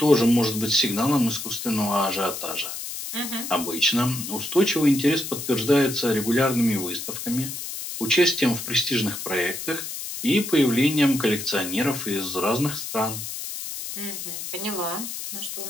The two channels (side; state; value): left; noise; hiss, 7 dB below the sound